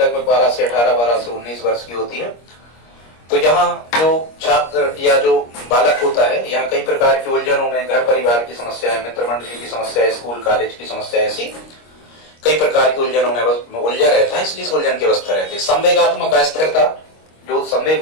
12 से 18, 12 से 19 वर्ष की होती है, तो यहाँ जो छात्र या जो बालक होता है, यहाँ कई प्रकार की उलझनों में, घर परिवार की समस्याएं, मित्र मंडली की समस्या, स्कूल कॉलेज की समस्या, ऐसी कई प्रकार की उलझनों में उलझा रहता है, इसलिए इस उलझन की अवस्था रहती है। संवेगात्मक अस्थिरता, जो संवेग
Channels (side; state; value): right; late; 25 ms